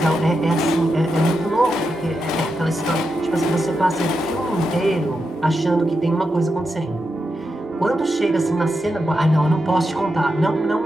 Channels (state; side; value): normal; both; correlation 0.87